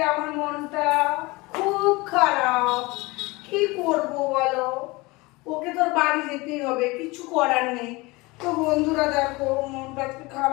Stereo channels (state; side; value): quieter; right; 23.4 dB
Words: আমার মনটা খুব খারাপ, কি করব বলো? ওকে তোর বাড়ি যেতেই হবে, কিছু করার নেই। তো বন্ধুরা দেখো, মনটা আজকে